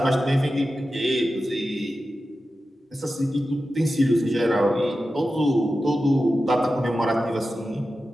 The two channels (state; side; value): normal; both; correlation 0.93